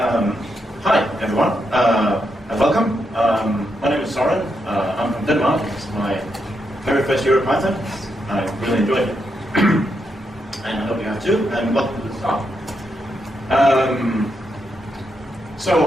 Hi, everyone, and welcome. My name is Soren. I'm from Denmark. It's my very first EuroPython. I really enjoyed it. And I hope you have too, and welcome to the talk.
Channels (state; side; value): normal; both; correlation 0.82